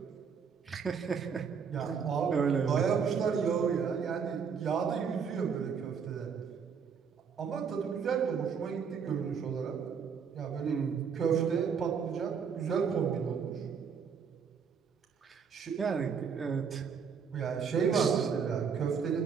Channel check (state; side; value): quieter; left; 6.5 dB